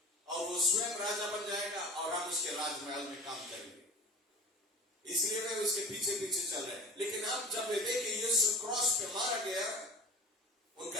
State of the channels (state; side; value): normal; both; correlation 0.39